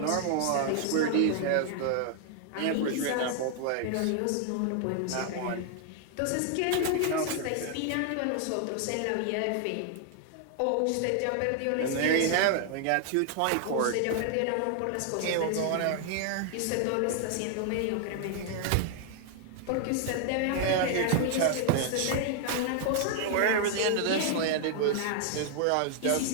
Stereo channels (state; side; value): different; both; correlation 0.00